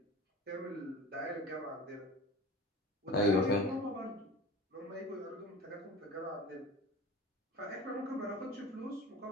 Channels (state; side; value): normal; both; correlation 0.36